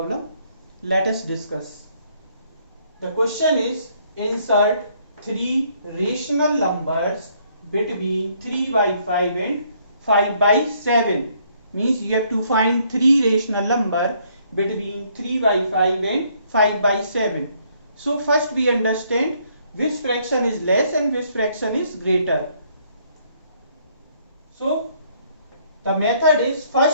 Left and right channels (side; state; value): both; inverted; correlation -0.67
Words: Let us discuss. The question is insert three rational numbers between 3 by 5 and 5 by 7. Means you have to find three rational number between 3 by 5 and 5 by 7. So first we understand which fraction is less and which fraction is greater. So the method is